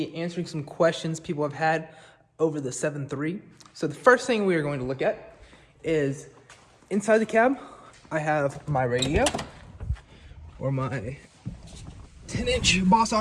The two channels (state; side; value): identical; both; correlation 1.00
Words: answering some questions people have had over the 7.3. So the first thing we are going to look at is inside the cab. I have my radio, or my 10-inch Boss